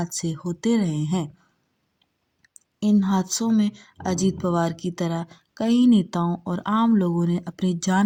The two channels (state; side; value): identical; both; correlation 1.00